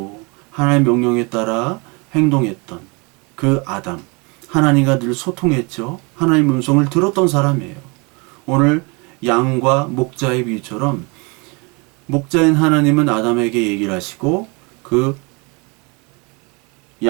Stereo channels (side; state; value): left; quieter; 29.7 dB